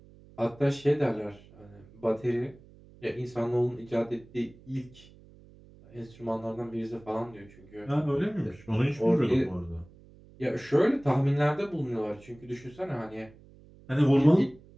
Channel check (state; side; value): noise; right; hum, 23 dB below the sound